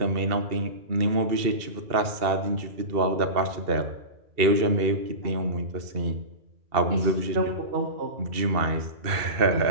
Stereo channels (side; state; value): left; late; 2.7 ms